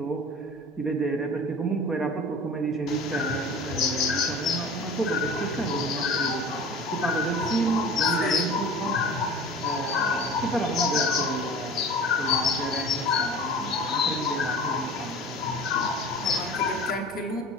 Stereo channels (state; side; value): normal; both; correlation 0.40